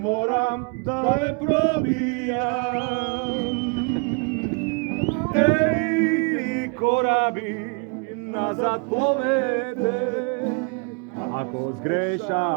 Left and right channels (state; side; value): quieter; left; 33.8 dB